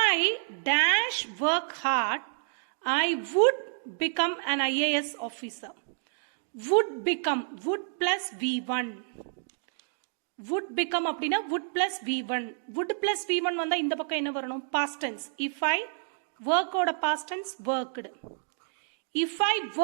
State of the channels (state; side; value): silent; left; digital silence